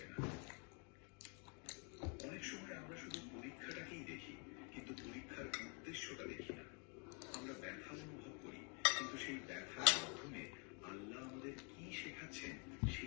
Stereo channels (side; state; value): right; quieter; 35.9 dB